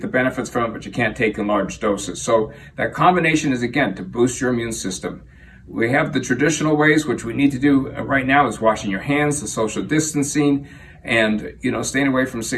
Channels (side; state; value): both; identical; correlation 1.00